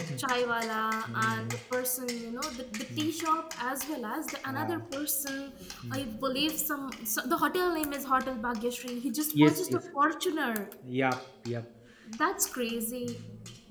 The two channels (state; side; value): identical; both; correlation 1.00